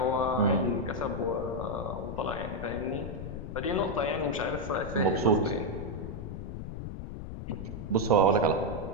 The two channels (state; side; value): noise; left; rumble, 7 dB below the sound